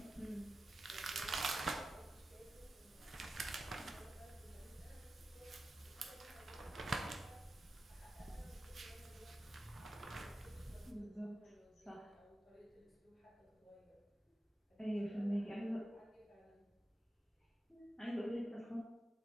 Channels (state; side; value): normal; both; correlation 0.93